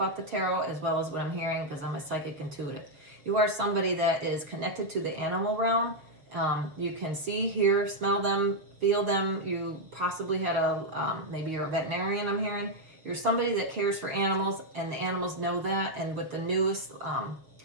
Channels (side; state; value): left; late; 6.9 ms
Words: the tarot, as well as what I'm hearing, because I'm a psychic intuitive. You are somebody that is connected to the animal realm. You can see, hear, smell them, feel them. You possibly had maybe you're a veterinarian, I'm hearing. You're somebody that cares for animals, and the animals know that. And with the newest